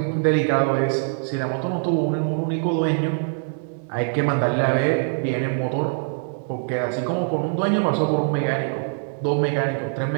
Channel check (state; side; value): silent; left; digital silence